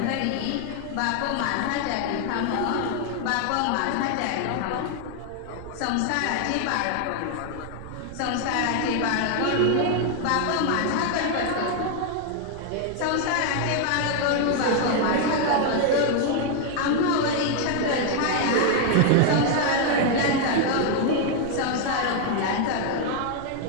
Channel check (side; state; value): both; different; correlation 0.00